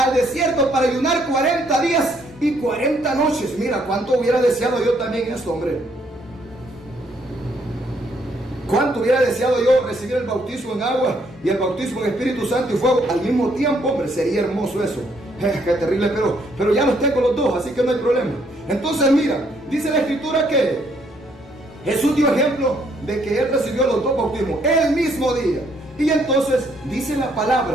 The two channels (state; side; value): normal; both; correlation 0.69